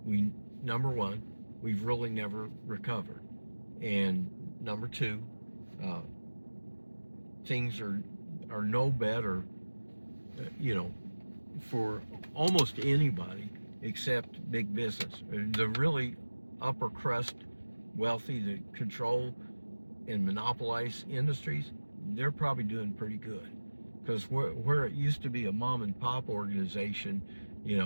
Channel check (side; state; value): both; inverted; correlation -1.00